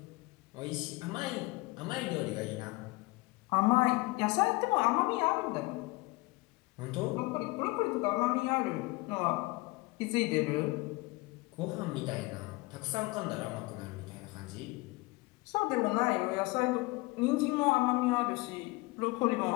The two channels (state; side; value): quieter; right; 22.9 dB